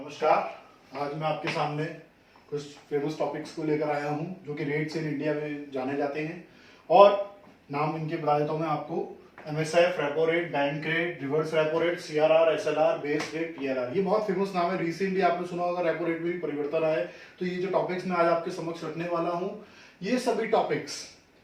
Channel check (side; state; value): both; identical; correlation 1.00